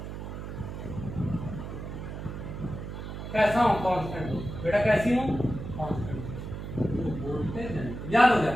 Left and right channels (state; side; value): noise; right; hum, 8 dB below the sound